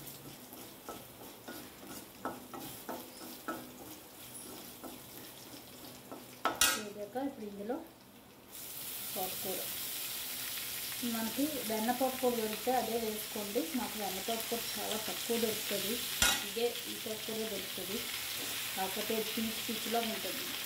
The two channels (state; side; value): identical; both; correlation 1.00